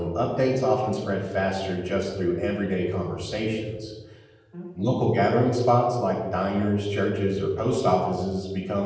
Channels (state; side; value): identical; both; correlation 1.00